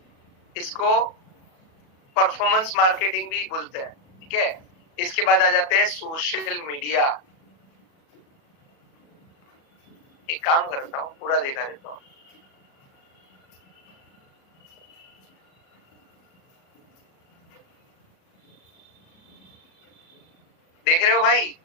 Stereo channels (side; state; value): right; late; 37 ms